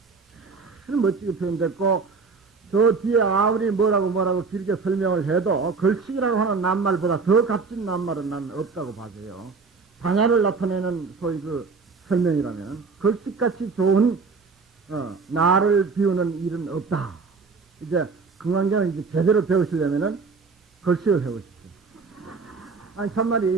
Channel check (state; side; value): quieter; left; 4.7 dB